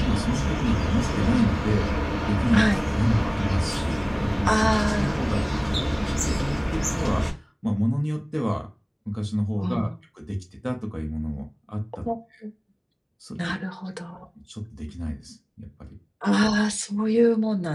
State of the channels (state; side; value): identical; both; correlation 1.00